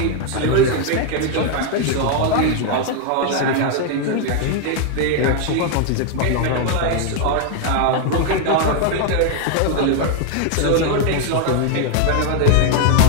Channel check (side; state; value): both; different; correlation 0.00